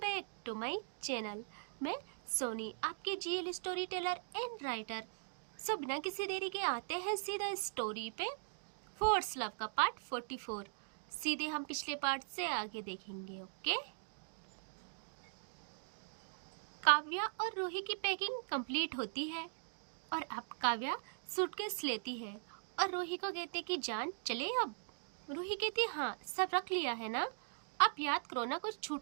to my channel. मैं सोनी, आपकी GL story teller and writer. So बिना किसी देरी के आते हैं सीधा स्टोरी पे। फोर्स लव का पार्ट 44 सीधे हम पिछले पार्ट से आगे देखेंगे। ओके। काव्या और रूही की पैकिंग कंप्लीट होती है और अब काव्या सूटकेस लेती है और रूही को कहते कि जान चले अब। रूही कहती है हाँ सब रख लिया है ना, अब याद करो ना कुछ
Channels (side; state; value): left; silent; digital silence